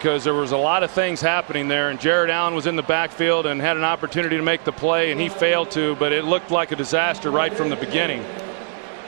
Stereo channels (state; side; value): silent; left; 65 dB below the other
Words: there was a lot of things happening there, and Jared Allen was in the backfield and had an opportunity to make the play, and he failed to, but it looked like a disaster right from the beginning.